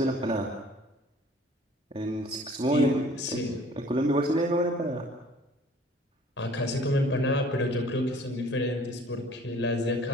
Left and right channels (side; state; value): both; normal; correlation 0.53